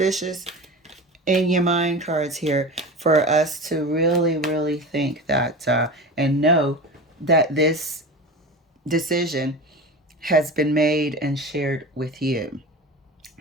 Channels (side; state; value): both; normal; correlation 0.30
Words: in your mind cards here for us to really, really think that and know that this decision has been made and shared with you.